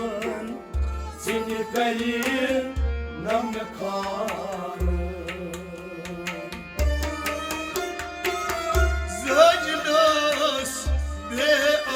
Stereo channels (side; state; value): both; identical; correlation 1.00